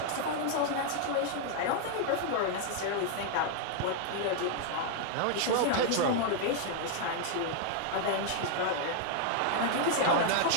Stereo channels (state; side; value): different; both; correlation 0.00